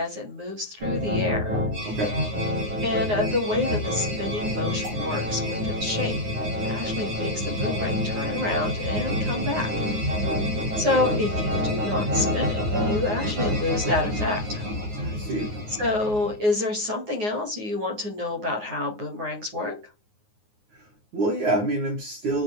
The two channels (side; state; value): left; late; 9.5 ms